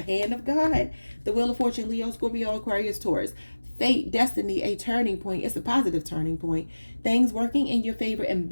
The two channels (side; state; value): both; inverted; correlation -1.00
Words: hand of God. The wheel of fortune, Leo, Scorpio, Aquarius, Taurus. Fate, destiny, a turning point. It's a positive turning point. Things working in your favor and